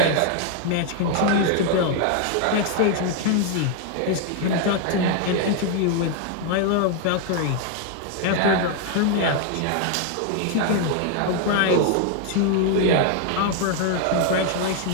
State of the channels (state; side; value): different; both; correlation 0.00